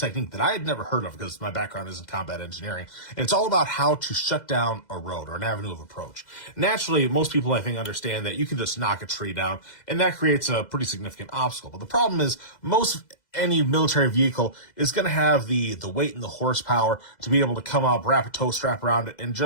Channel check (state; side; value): late; right; 2.0 ms